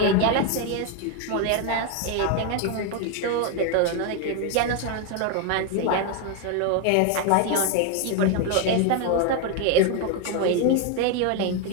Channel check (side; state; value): both; different; correlation 0.01